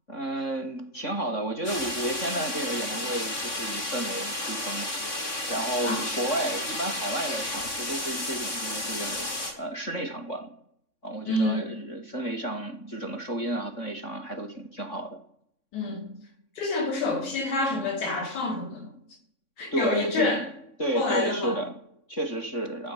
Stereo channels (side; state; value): right; late; 3.6 ms